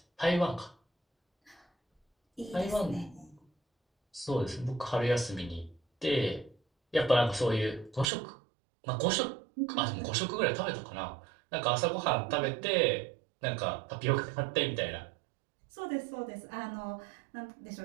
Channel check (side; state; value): left; drops out; at 8.1 s